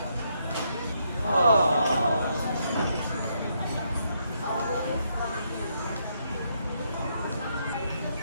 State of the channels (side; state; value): both; inverted; correlation -0.76